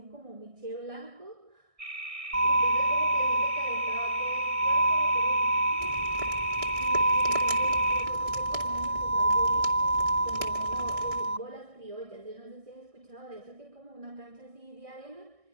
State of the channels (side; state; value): left; late; 1.6 ms